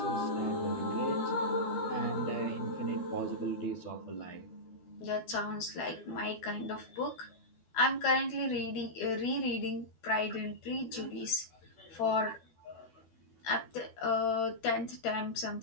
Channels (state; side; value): late; right; 12 ms